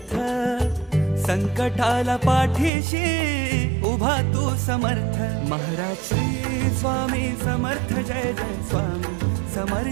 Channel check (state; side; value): drops out; left; at 2.7 s